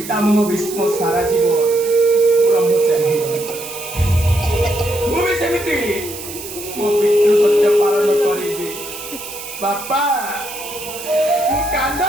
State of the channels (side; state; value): right; noise; hiss, 11 dB below the sound